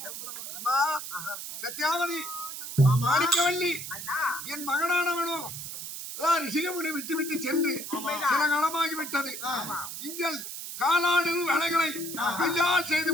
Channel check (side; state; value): right; noise; hiss, 8 dB below the sound